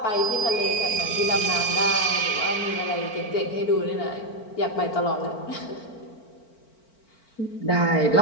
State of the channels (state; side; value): late; right; 4.5 ms